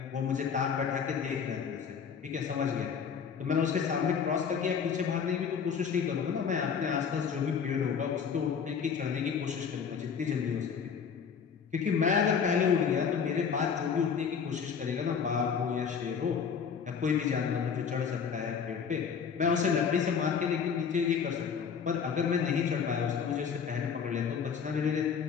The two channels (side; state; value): right; quieter; 6.7 dB